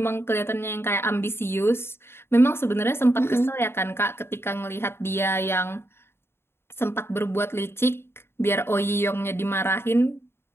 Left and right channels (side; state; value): right; late; 0.12 ms